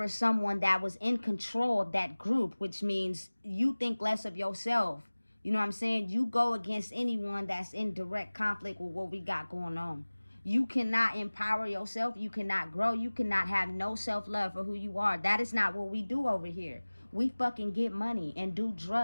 someone that was in control of that group, which means you think less of yourself. You know what I'm saying? You go against anyone that's in direct conflict with what we got going on. You cannot empower yourself. You cannot grow. You cannot have no self-love for who you are. That is not what we do over here. We fucking get money and do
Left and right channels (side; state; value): both; inverted; correlation -1.00